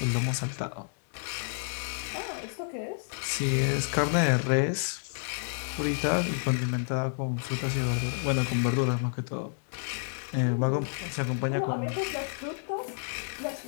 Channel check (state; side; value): silent; right; digital silence